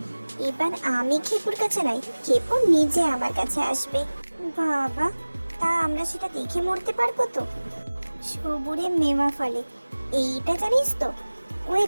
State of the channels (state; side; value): inverted; both; correlation -1.00